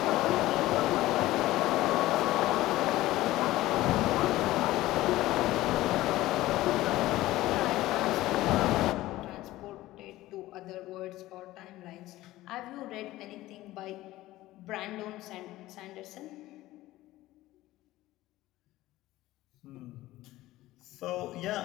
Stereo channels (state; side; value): quieter; right; 16.6 dB